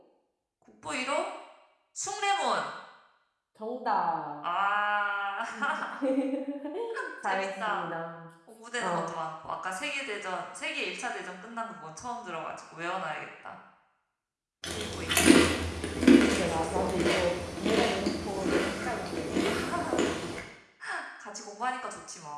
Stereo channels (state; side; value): identical; both; correlation 1.00